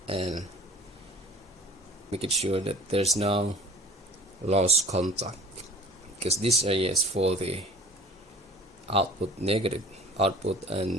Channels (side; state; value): both; normal; correlation 0.44